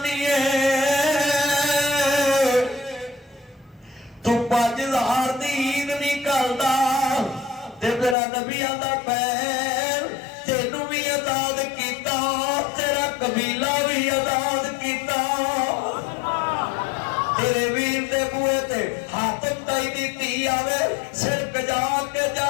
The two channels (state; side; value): drops out; right; at 8.2 s